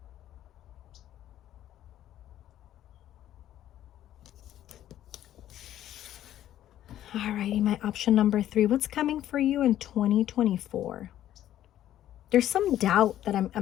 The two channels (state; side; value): quieter; right; 12.2 dB